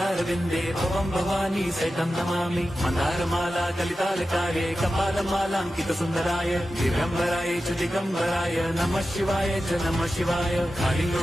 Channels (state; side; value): normal; both; correlation 0.92